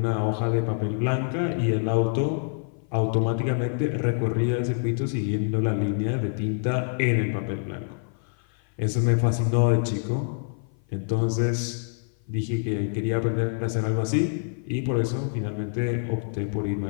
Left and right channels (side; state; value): right; silent; 56 dB below the other